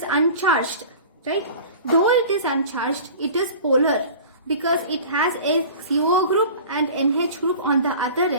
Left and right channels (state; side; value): inverted; both; correlation -0.40